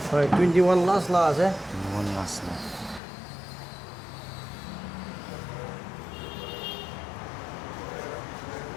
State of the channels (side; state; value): right; drops out; at 3.0 s